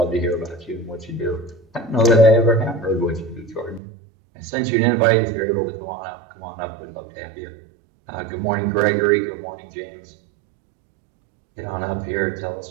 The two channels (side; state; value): left; drops out; at 3.8 s